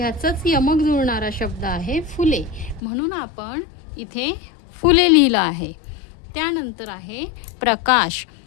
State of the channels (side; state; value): right; drops out; at 2.8 s